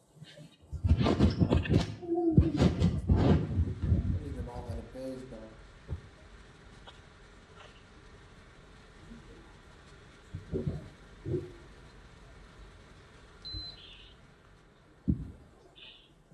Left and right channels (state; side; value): identical; both; correlation 1.00